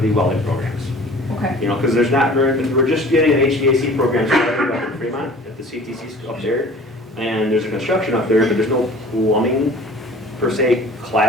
the welding programs. Okay. You know, because there's not very, we're just getting an HVAC program started up in Fremont at the CTC up there. And there's a construction up there, but there's no plumbing per se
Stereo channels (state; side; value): normal; both; correlation 0.46